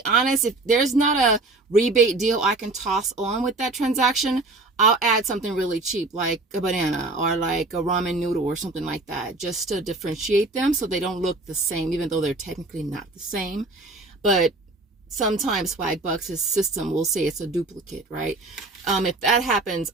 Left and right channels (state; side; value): quieter; left; 3.1 dB